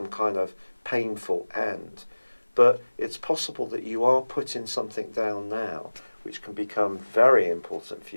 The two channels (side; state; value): both; inverted; correlation -1.00